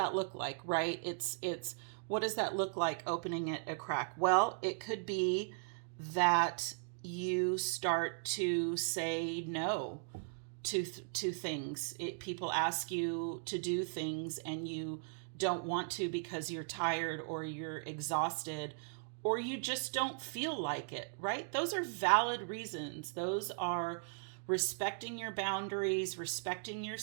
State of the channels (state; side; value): silent; left; digital silence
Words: look like, right? It's what does that look like, opening it a crack? Well, it could be that you start to say no to things. People ask you to do things and you don't want to because you're tired or you're exhausted or you just don't feel like it, right? Those are valid reasons. Those are respecting your boundaries, respecting